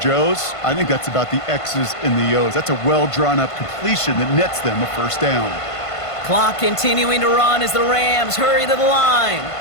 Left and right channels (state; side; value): late; right; 1.5 ms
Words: I think that's about the X's and the O's. That's a well-drawn-up completion that nets them a first down. Clock continuing to run as the Rams hurry to the line.